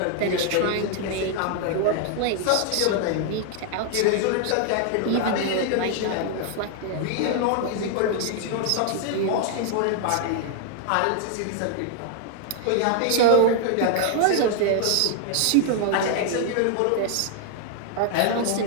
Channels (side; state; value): both; different; correlation 0.00